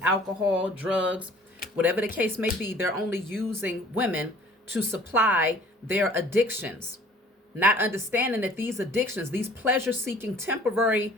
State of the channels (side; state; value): both; normal; correlation 0.52